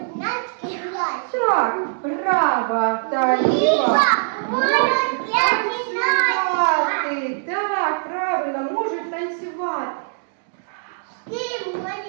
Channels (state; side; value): silent; left; digital silence